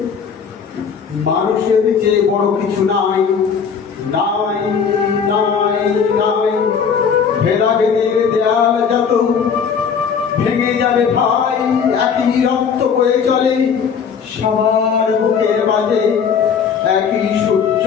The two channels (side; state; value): right; quieter; 6.6 dB